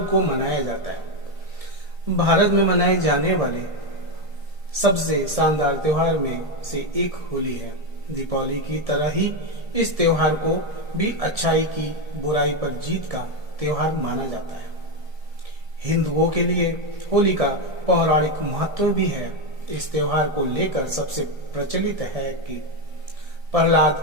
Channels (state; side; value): late; left; 1.7 ms